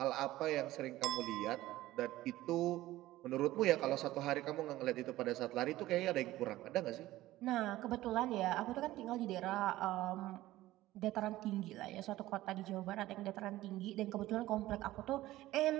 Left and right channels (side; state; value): left; quieter; 16.2 dB